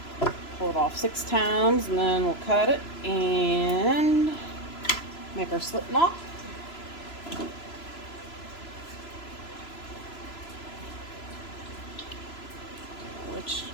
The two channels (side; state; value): right; late; 3.0 ms